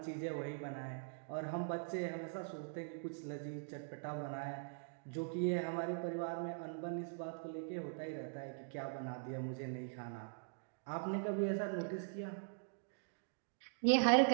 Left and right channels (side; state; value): left; silent; digital silence